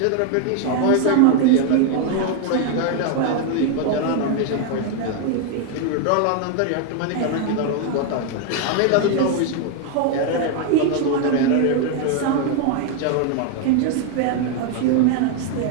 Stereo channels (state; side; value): different; both; correlation 0.01